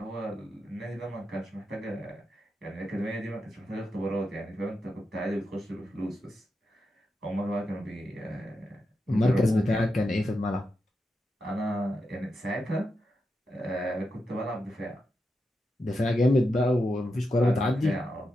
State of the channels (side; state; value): both; normal; correlation 0.87